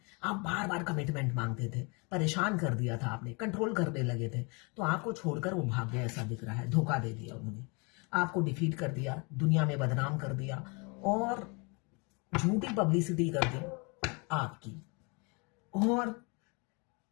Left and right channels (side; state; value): right; quieter; 31.3 dB